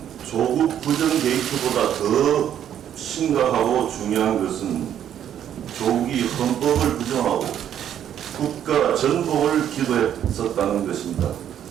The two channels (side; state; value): left; quieter; 10.0 dB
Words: 조국 부정 게이트보다 더 심각하고 중요한 것은 조국이 헌법을 부정하고 국가 전복을 기도했었다는 것입니다.